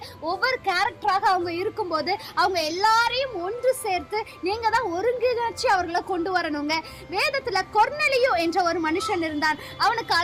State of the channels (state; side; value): identical; both; correlation 1.00